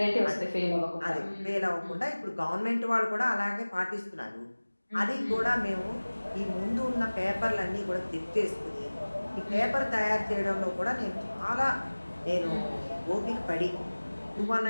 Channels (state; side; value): inverted; both; correlation -1.00